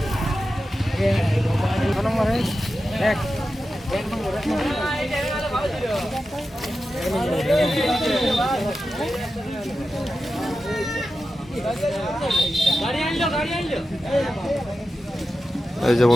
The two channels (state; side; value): normal; both; correlation 0.91